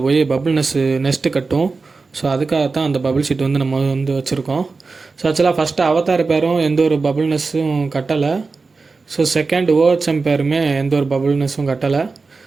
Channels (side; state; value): left; quieter; 4.2 dB